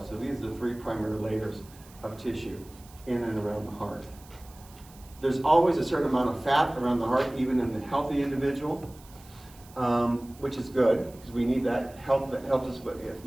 So these are the three primary layers of tissue in and around the heart. There's always a certain amount of fat around the heart, even in the healthy individual, which is good because we need that help. That helps us with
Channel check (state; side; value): noise; right; hiss, 24 dB below the sound